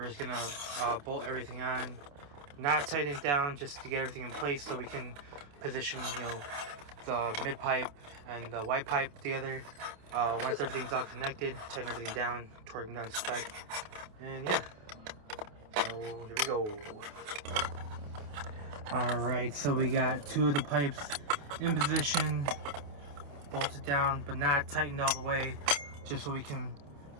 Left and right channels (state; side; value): late; left; 28 ms